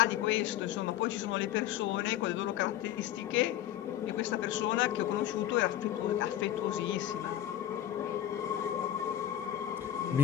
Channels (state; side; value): quieter; right; 12.4 dB